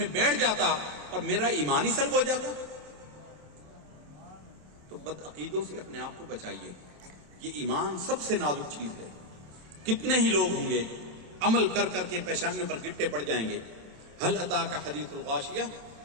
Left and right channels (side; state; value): left; late; 27 ms